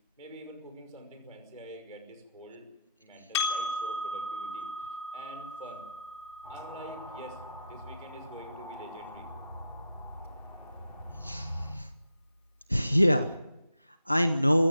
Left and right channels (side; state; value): both; inverted; correlation -0.75